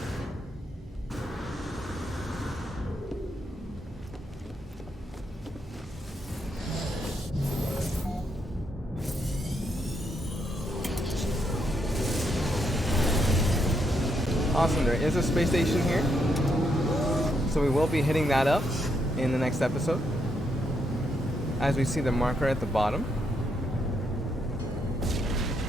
Awesome, there is a space station here. So we will be hitting that up in the next episode. As we see the marker at the bottom.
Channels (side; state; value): both; normal; correlation 0.78